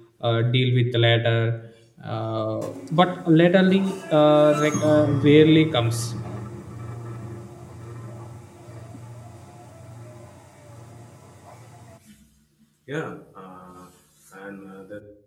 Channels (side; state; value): both; identical; correlation 1.00